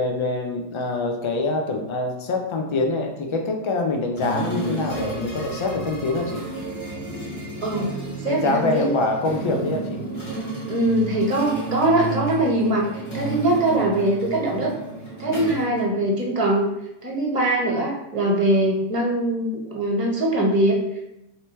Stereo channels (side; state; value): right; late; 1.3 ms